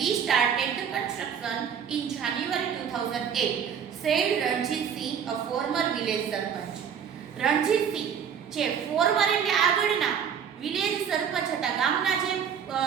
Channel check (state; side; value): quieter; left; 7.7 dB